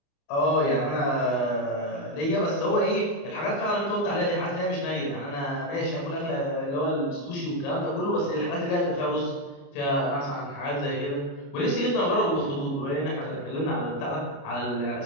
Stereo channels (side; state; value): right; late; 29 ms